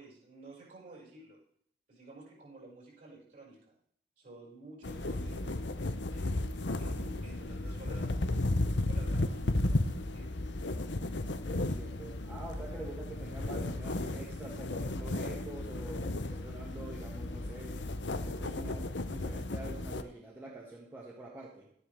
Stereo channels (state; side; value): normal; both; correlation 0.76